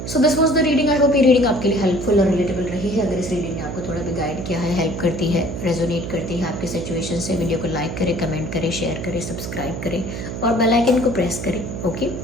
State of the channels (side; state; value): right; noise; hum, 6 dB below the sound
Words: So this was the reading. I hope ये रीडिंग आपके लिए हेल्पफुल और रिलेटेबल रही है। अगर इस रीडिंग ने आपको थोड़ा भी गाइड किया है, हेल्प करती है, रेजोनेट करती है आपकी सिचुएशन से, वीडियो को लाइक करें, कमेंट करें, शेयर करें, सब्सक्राइब करें और बेल आइकन को प्रेस करें, ओके।